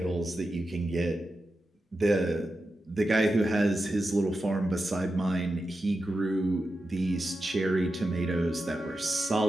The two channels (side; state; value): both; normal; correlation 0.90